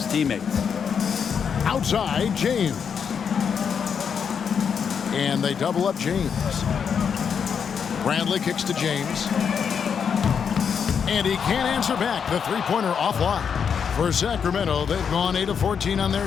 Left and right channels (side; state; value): right; quieter; 7.0 dB